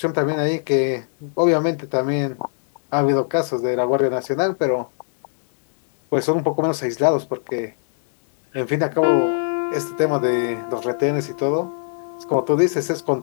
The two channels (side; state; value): right; silent; digital silence